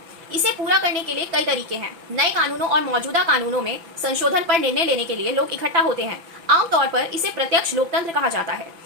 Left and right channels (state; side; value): late; left; 5.9 ms